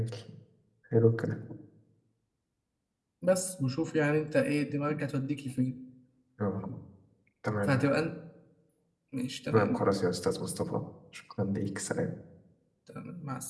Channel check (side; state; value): both; identical; correlation 1.00